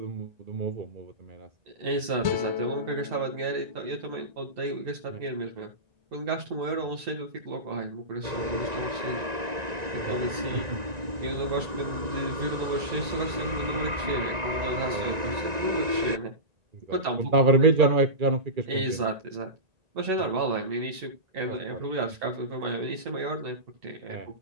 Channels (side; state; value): left; late; 1.9 ms